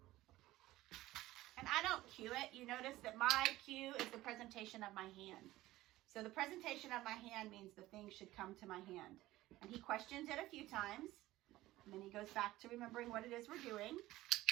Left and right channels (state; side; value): quieter; left; 16.7 dB